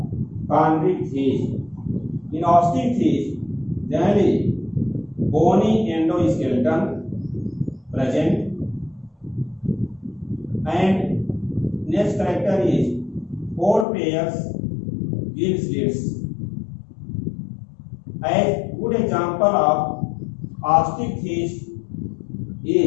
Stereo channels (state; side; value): drops out; right; at 13.9 s